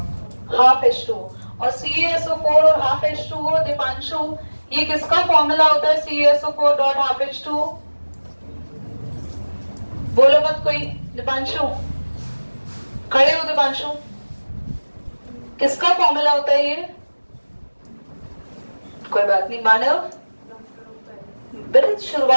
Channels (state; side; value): inverted; both; correlation -1.00